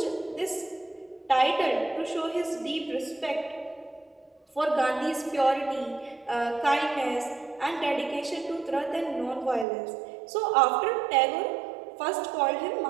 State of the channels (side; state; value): left; drops out; at 9.7 s